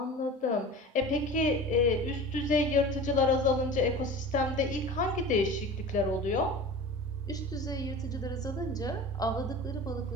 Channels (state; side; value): normal; both; correlation 0.36